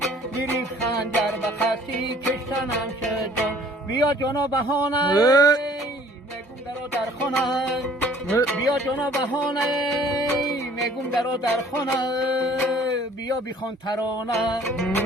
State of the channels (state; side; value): normal; both; correlation 0.55